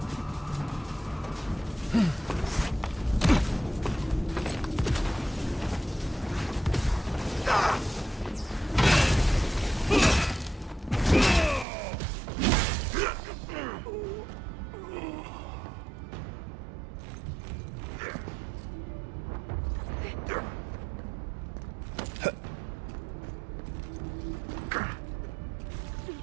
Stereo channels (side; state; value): left; drops out; at 11.7 s